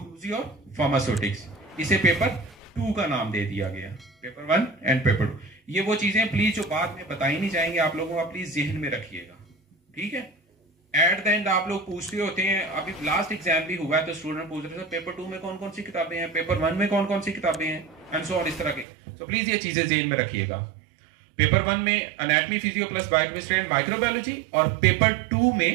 और फार्मास्यूटिक्स, इसे पेपर 2 का नाम दे दिया गया, पेपर 1 एंड पेपर 2। ये वो चीजें प्लीज जो बाद में बताई नहीं जाएंगे, आप लोगों का प्लीज जहन में रखिएगा, ठीक है। एट द एंड आप लोग पूछते होते हैं, अभी लास्ट एग्जाम भी हुआ है तो स्टूडेंट पूछ रहे थे पेपर 2 में कौन कौन सी किताबें हैं, पेपर 1 में कौन कौन सी किताबें हैं, एंड सो ऑन, इस तरह के। तो प्लीज ये चीजें जहन में रखिएगा। पेपर 1 में anatomy, physio plus biochemistry and microbiology, और पेपर 2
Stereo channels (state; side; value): drops out; left; at 18.9 s